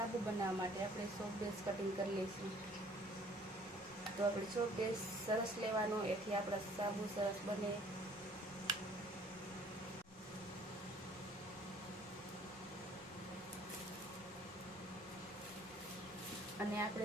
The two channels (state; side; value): normal; both; correlation 0.56